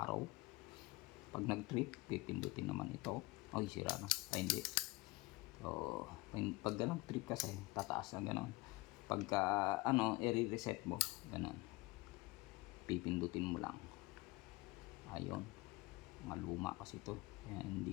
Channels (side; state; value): right; quieter; 21.8 dB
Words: arrow. Pag nag-trip, pipindutin naman ito. Ay, sira na. Ay, hindi. So pag ganun trip kasi tataas na ganon. Pagka i-reset mo ganon, pipindutin mo lang. Ayun, maluma kasi ito, kaya